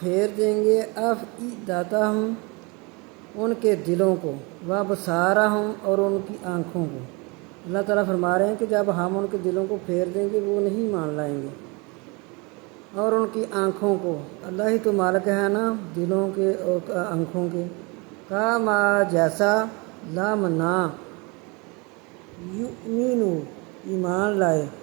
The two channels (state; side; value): quieter; left; 28.6 dB